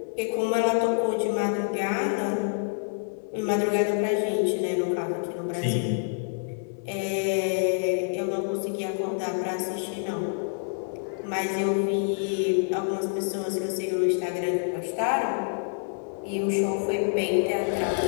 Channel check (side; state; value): right; silent; digital silence